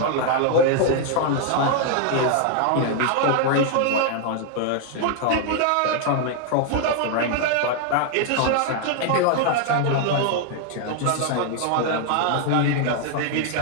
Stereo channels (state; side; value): different; both; correlation 0.00